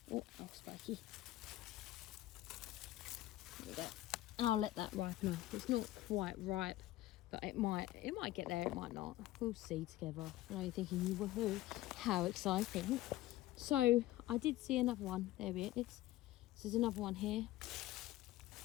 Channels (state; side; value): quieter; right; 15.9 dB